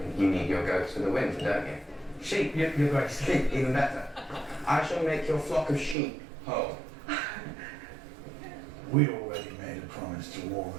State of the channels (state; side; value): drops out; left; at 6.0 s